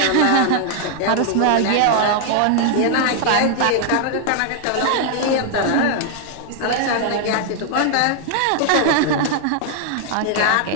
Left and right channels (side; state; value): both; different; correlation 0.00